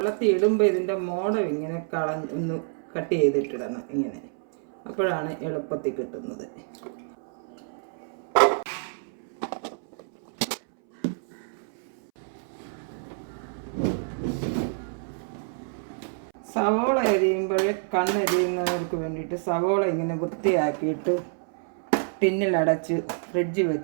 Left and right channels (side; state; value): left; silent; 60 dB below the other